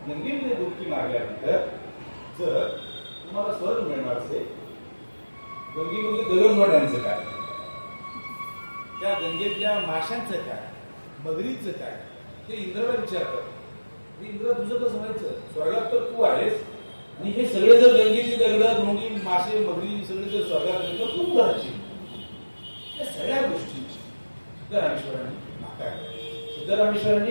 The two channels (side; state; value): both; inverted; correlation -1.00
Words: गंगेमध्ये डुबकी मारल्यानंतर जर तुम्हाला स्वर्ग मिळणार असेल गंगेमध्ये गगनवाड्यांचं काय, त्या गंगेतल्या माशांचं काय, मगरीचं काय ते इंद्राला विचारतात. इंद्र तुझं कसं व्हायचं, स्वर्गात तर तू आहेस आणि हे सगळे जर गंगेची दगड धोंडी मासे मगरी सगळे जर स्वर्गात तर तू करायची. या सगळ्या गोष्टी सिद्धरामेश्वरांनी नाकारल्या.